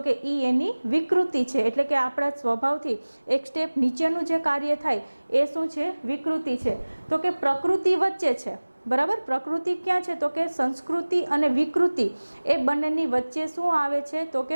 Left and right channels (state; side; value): inverted; both; correlation -1.00